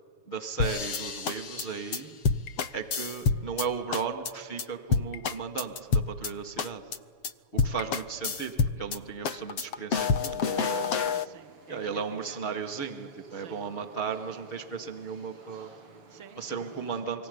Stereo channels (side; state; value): right; late; 7.7 ms